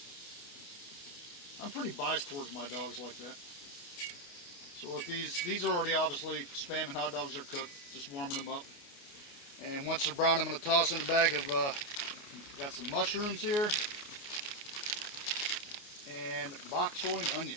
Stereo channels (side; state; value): right; late; 29 ms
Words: I'm pretty biased towards my dogs like that. So with these are already obviously spam and hot dogs are cooked. Just warming them up. And once they're brown, I'm going to toss in a bag of, got some mushrooms here. And bok choy and